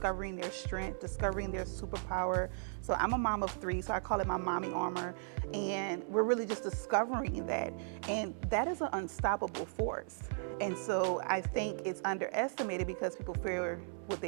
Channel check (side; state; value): left; silent; 54 dB below the other